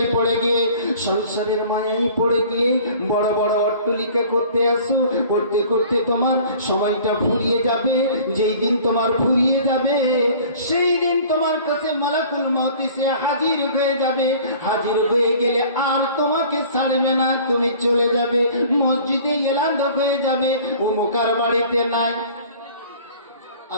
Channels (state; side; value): inverted; both; correlation -0.48